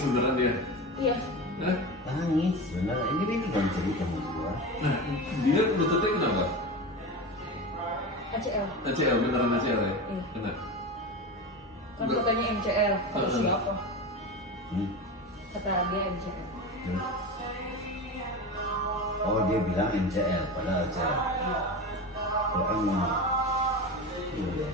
beneran dia? Iya. Hah? Nangis, benar. Ini kan cerita sama gua. Nah, dia lututnya kenapa? ACL. ACL, beneran ACL ya? Iya. Kena. Kan katanya MCL. Kata siapa? Kata dia MCL. Oh, dia bilang MCL, padahal ACL. Kalau M mana? Iya.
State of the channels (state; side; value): normal; both; correlation 0.25